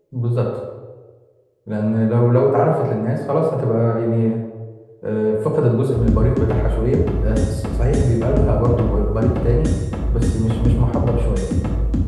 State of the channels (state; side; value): identical; both; correlation 1.00